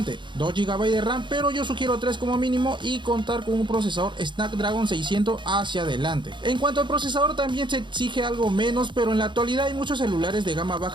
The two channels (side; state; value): left; late; 0.23 ms